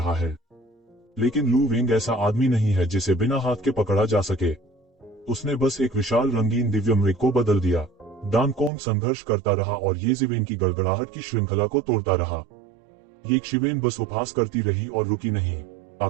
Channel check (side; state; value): left; drops out; at 8.7 s